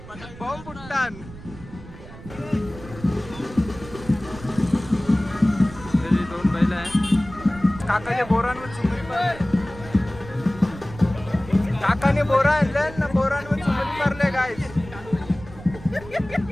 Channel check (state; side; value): noise; right; rumble, 16 dB below the sound